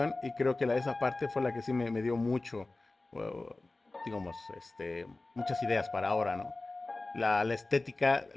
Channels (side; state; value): right; quieter; 3.1 dB